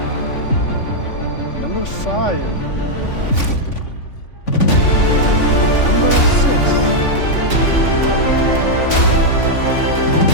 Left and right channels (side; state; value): right; late; 3.5 ms